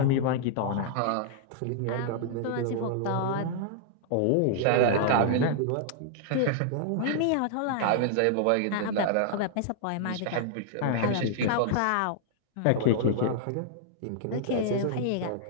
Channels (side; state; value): both; different; correlation -0.01